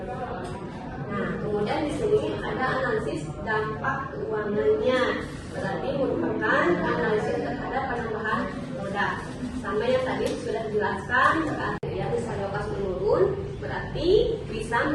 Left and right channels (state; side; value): identical; both; correlation 1.00